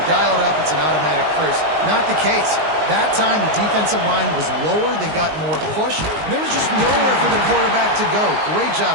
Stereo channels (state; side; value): late; left; 19 ms